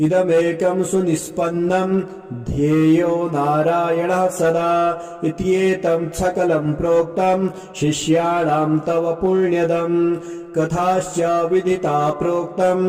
इदमेकं सुनिष्पन्नं ध्येयो नारायणः सदा इत्येतं सकलं प्रोक्तं शिष्याणां तव पुण्यदम् कथाश्च विदिता प्रोक्तं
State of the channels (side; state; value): both; identical; correlation 1.00